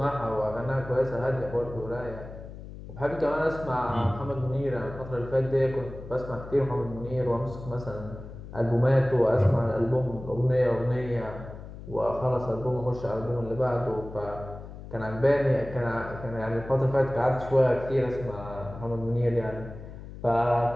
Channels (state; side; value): noise; left; hum, 13 dB below the sound